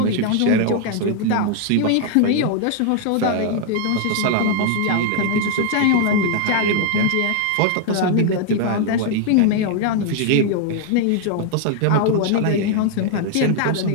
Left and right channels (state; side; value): different; both; correlation 0.00